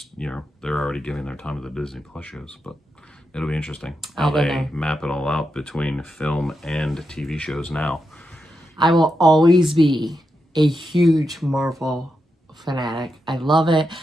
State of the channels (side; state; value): both; normal; correlation 0.86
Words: already giving their time to the Disney Plus shows. But it'll be interesting how they map it all out between film and TV shows now. I will always be a huge Marvel fanatic. I love it.